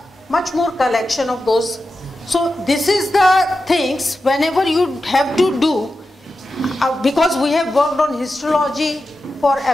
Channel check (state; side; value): normal; both; correlation 0.91